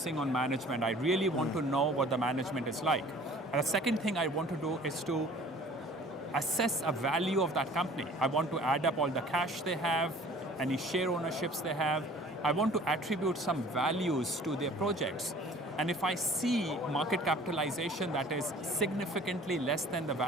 on management. I really want to know what the management is like. And the second thing I want to do is to assess a value of that company. I want to add up all the cash they have, any share ownerships they have. I want to attribute some values to their projects. And if I see market capitalization that is significantly less than the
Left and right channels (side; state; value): both; normal; correlation 0.49